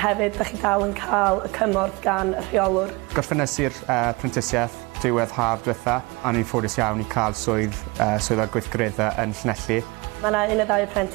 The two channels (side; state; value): left; quieter; 25.2 dB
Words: hefyd da chi dal yn cael y cymorth gan y rheolwr. Gorffennes i'r prentisiaeth diwedd haf diwetha a ni'n ffodus iawn I cael swydd o gweithgareddau yn Llanelli. Mae yna 1 neu 2